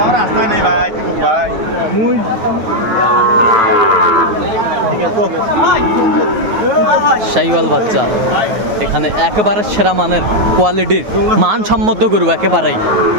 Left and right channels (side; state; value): left; late; 9.4 ms